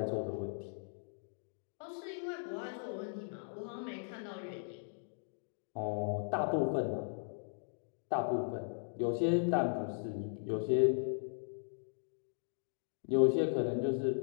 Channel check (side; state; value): right; silent; digital silence